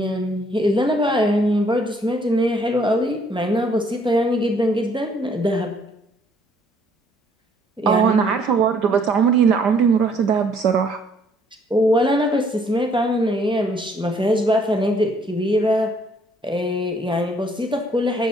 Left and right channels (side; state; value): both; normal; correlation 0.64